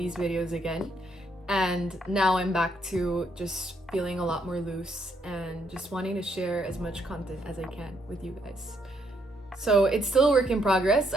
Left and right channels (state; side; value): normal; both; correlation 0.73